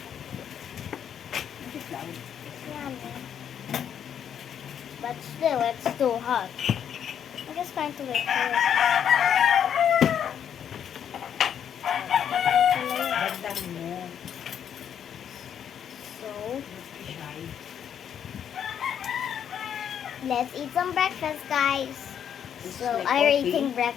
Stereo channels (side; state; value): right; quieter; 8.8 dB